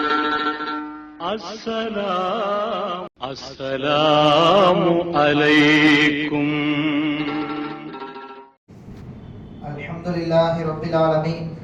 அஸ்ஸலாமு அலைக்கும். அல்ஹம்துலில்லாஹி ரப்பில் ஆலமீன்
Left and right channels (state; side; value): identical; both; correlation 1.00